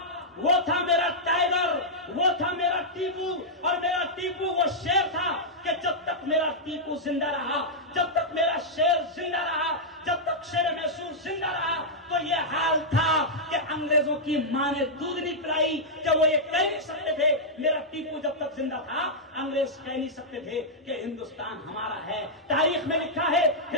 था मेरा टाइगर, वो था मेरा टीपू। और मेरा टीपू वो शेर था कि जब तक मेरा टीपू जिंदा रहा, जब तक मेरा शेर जिंदा रहा, जब तक शेर मैसूर जिंदा रहा, तो ये हाल था कि अंग्रेजों की मां ने दूध नहीं पिलाई कि वो ये कह नहीं सकते थे। मेरा टीपू जब तक जिंदा था, अंग्रेज कह नहीं सकते थे कि हिंदुस्तान हमारा है। तारीख में लिखा है,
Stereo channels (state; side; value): normal; both; correlation -0.08